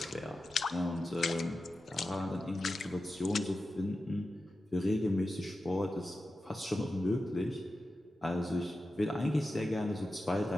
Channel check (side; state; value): both; normal; correlation 0.92